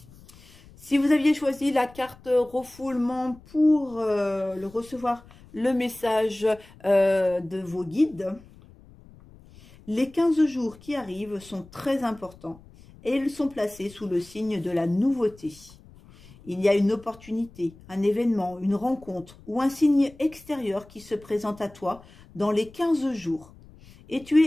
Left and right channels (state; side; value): noise; left; rumble, 23 dB below the sound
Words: Si vous aviez choisi la carte refoulement pour le recevoir le message de vos guides, les 15 jours qui arrivent sont très importants et ils sont placés sous le signe de la nouveauté. Il y a une opportunité, un événement, une rencontre ou un signe extérieur qui se présente à toi dans les 15 jours. Et tu